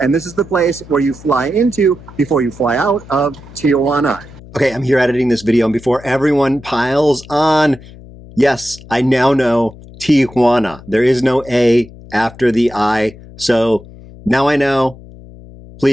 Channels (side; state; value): left; noise; hum, 19 dB below the sound